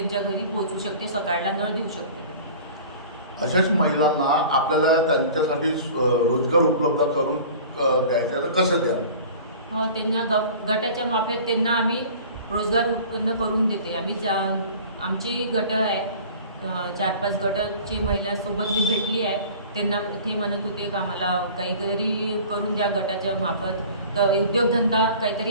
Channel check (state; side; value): inverted; both; correlation -0.43